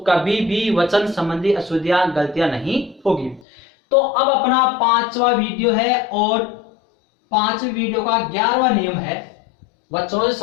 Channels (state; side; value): drops out; right; at 3.4 s